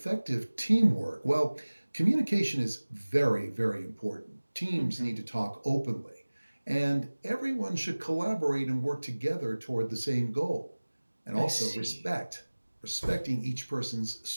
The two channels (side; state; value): both; inverted; correlation -1.00